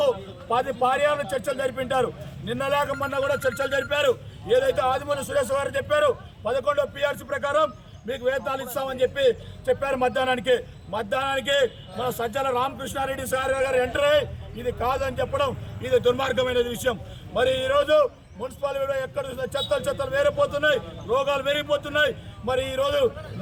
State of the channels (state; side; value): identical; both; correlation 1.00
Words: 10 పర్యాలు చర్చలు జరిపింటారు. నిన్న లేక మొన్న కూడా చర్చలు జరిపారు. ఏదైతే ఆదిమూలపు సురేష్ గారు చెప్పారు 11వ PRC ప్రకారం మీకు వేతనాలు ఇస్తామని చెప్పారు. మధ్యాహ్నానికి మన సజ్జల రామకృష్ణారెడ్డి సార్ గారు ఎంటర్ అయ్యి ఇది కాదని చెప్పడం ఇది దుర్మార్గమైన విషయం. మరి ఈరోజు మున్సిపాలిటీలో ఎక్కడ చెత్తలు వేరిపోతున్నాయి, రోగాలు పెరిగిపోతున్నాయి. మరి ఈరోజు